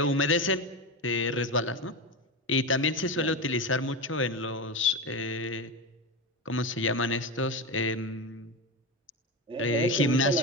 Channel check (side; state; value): both; normal; correlation 0.19